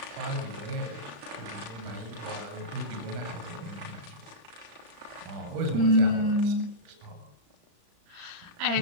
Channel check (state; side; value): late; left; 35 ms